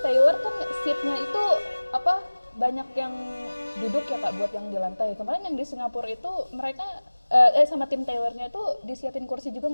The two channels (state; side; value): inverted; both; correlation -1.00